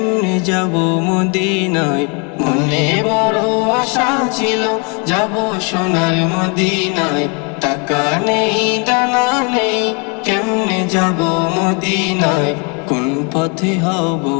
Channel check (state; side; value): quieter; right; 34.0 dB